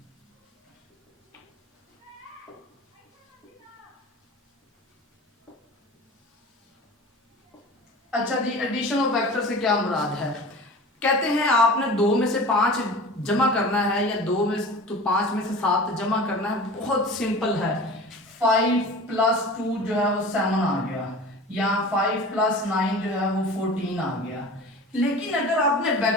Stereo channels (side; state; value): both; normal; correlation 0.38